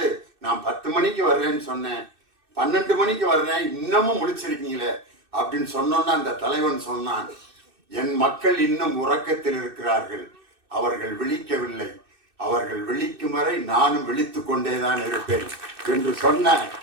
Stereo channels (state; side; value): late; left; 2.6 ms